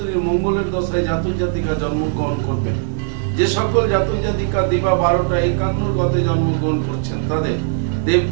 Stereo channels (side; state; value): left; silent; digital silence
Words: মঙ্গলের দশায় জাতক জাতিকা জন্মগ্রহণ করবেন। যে সকল জাতক জাতিকা দিবা 12টা 51 গতে জন্মগ্রহণ করছেন, তাদের